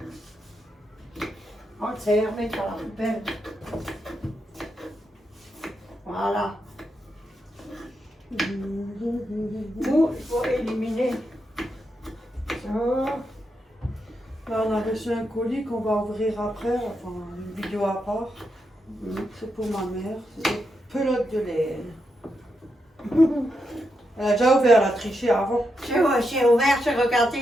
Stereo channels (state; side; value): normal; both; correlation 0.84